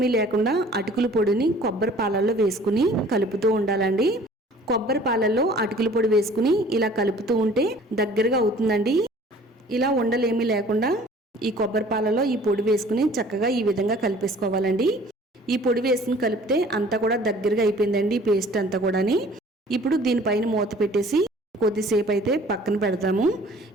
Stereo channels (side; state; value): both; normal; correlation 0.51